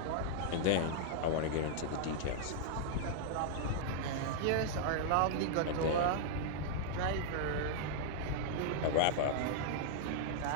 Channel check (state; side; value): different; both; correlation -0.01